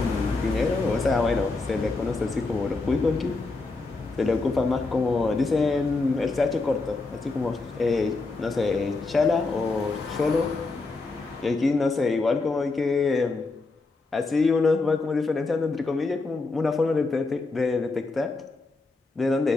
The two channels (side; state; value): right; quieter; 3.6 dB